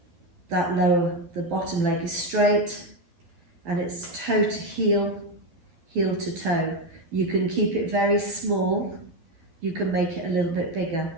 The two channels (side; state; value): left; late; 12 ms